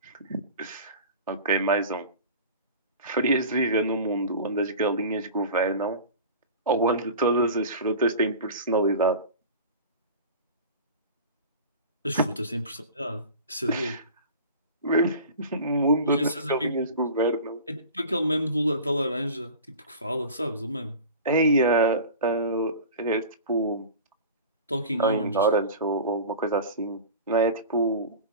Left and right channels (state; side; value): inverted; both; correlation -0.36